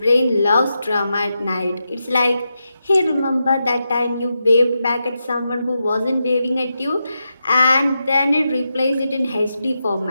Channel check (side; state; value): both; inverted; correlation -0.87